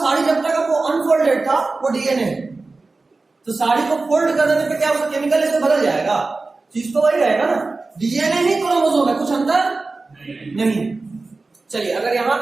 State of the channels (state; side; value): quieter; left; 3.6 dB